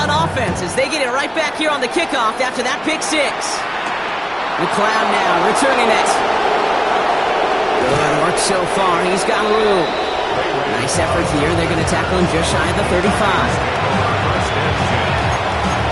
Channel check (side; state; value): both; identical; correlation 1.00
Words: offense as they get it right back here on the kickoff after that pick 6. McLeod now returning it. Good work so far. He's got room. Nice effort here. They're going to tackle him just shy of the 35.